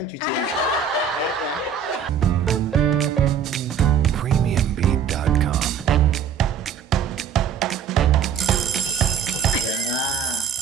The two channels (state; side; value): quieter; left; 7.2 dB